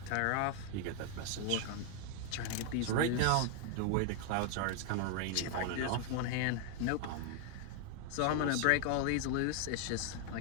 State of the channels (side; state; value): both; different; correlation 0.00